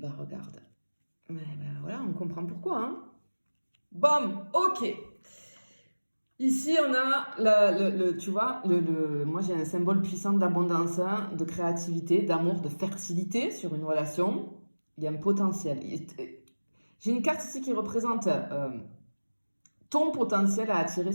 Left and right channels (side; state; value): both; inverted; correlation -1.00